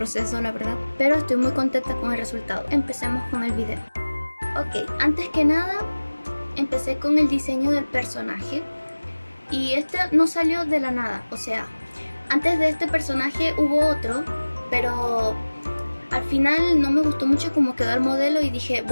la verdad, pero estoy muy contenta con el resultado. Empecemos con el video. Ok, antes que nada empecé con el diseño del personaje y este no salió de la nada, o sea, antes de este personaje hubo otro, pero al final no me gustó mucho cómo quedó el modelo y dije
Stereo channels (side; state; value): both; inverted; correlation -1.00